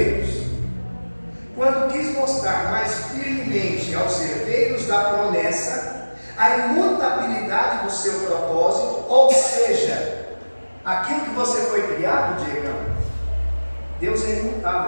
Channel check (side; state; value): both; inverted; correlation -1.00